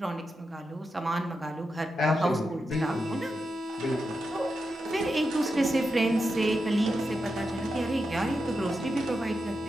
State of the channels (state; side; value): normal; both; correlation 0.88